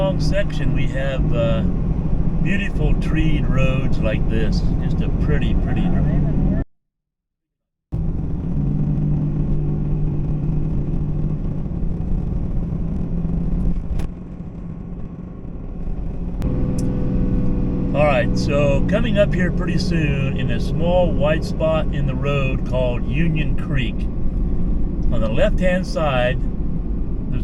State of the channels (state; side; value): identical; both; correlation 1.00